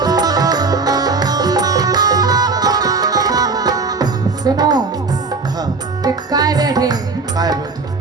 सुनो हाँ कि काय बैठे काय बैठी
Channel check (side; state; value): left; quieter; 4.2 dB